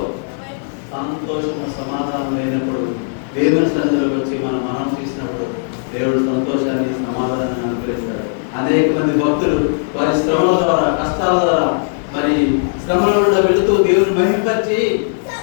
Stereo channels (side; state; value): right; silent; digital silence